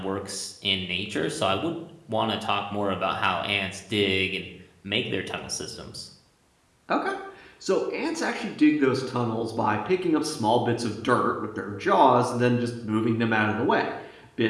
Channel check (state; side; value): identical; both; correlation 1.00